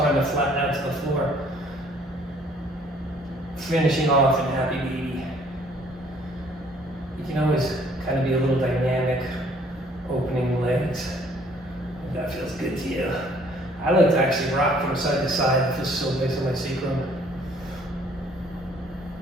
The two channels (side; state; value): both; normal; correlation 0.60